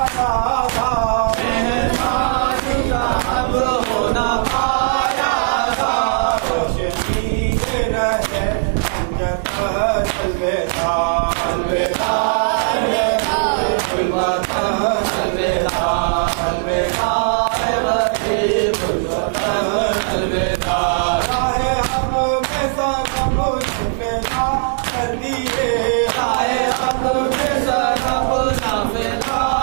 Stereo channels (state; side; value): silent; left; 62 dB below the other